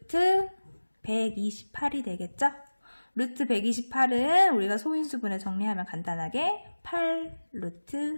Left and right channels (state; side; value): inverted; both; correlation -1.00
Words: 128이 되겠죠? 루트 128은 우리가 소인수분해 정리하면 간단하게 8